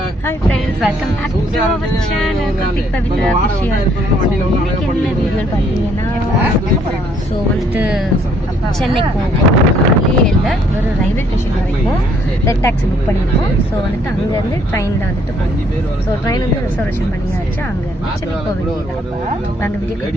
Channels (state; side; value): normal; both; correlation 0.66